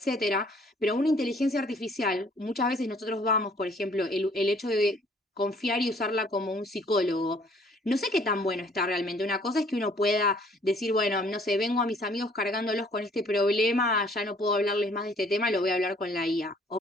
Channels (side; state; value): both; normal; correlation 0.59